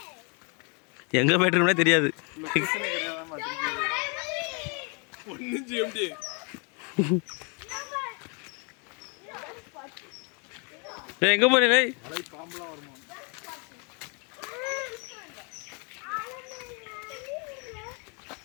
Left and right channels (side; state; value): right; quieter; 34.9 dB